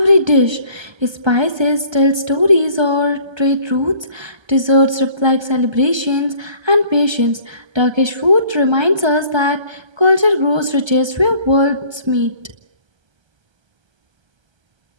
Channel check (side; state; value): left; late; 1.3 ms